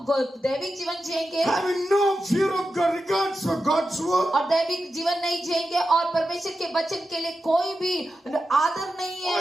दैविक जीवन जिएंगे having no fear of God, regards for God's word, और दैविक जीवन नहीं जिएंगे और परमेश्वर के वचन के लिए कोई भी आदर नहीं है,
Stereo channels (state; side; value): normal; both; correlation 0.90